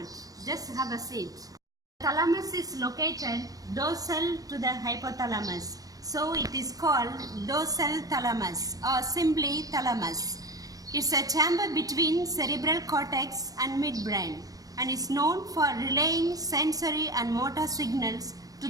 Just have a seat. Thalamus is located dorsal to the hypothalamus, so it is called dorsal thalamus or simply thalamus. It's a chamber between cerebral cortex and midbrain and is known for relaying sensory and motor signals to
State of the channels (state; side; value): late; left; 0.17 ms